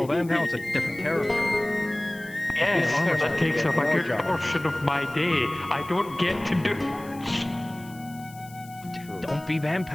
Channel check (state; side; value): noise; left; hiss, 22 dB below the sound